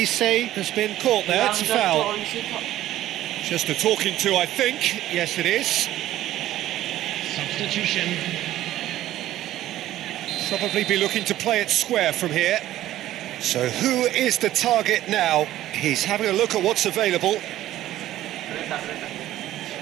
has been caught there. It's a foul. Just a talking to, I think. Yes, it is. Substitution. Probably be looking to play it square from here. So who is the target now? He's having a look at what's available.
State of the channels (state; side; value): quieter; left; 13.9 dB